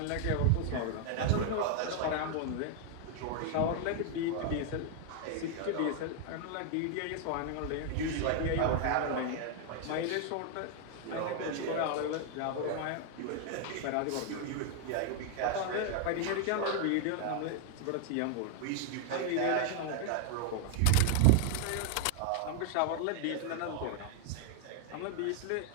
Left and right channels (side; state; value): both; different; correlation 0.00